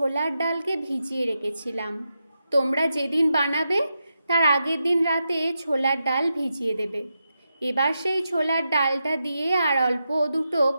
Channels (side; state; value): both; inverted; correlation -0.87